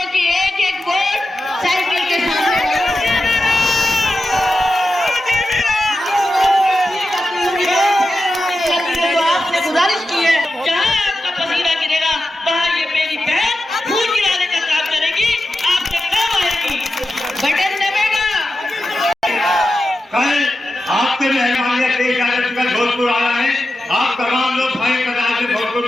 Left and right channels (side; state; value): both; normal; correlation 0.91